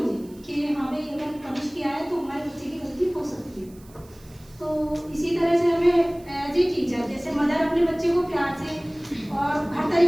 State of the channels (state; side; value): noise; right; hiss, 26 dB below the sound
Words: कि हाँ भाई अगर पनिश किया है तो हमारे बच्चे की गलती हो सकती है। तो इसी तरह से हमें एज ए टीचर, जैसे मदर अपने बच्चे को प्यार से और हर